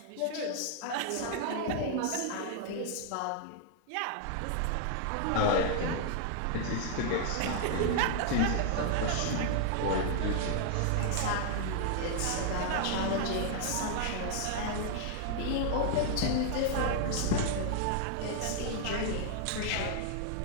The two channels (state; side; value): different; both; correlation 0.00